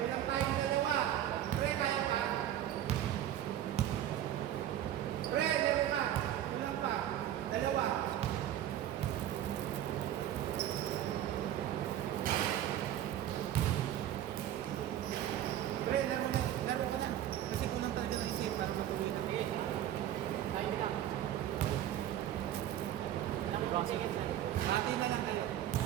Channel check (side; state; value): left; quieter; 11.7 dB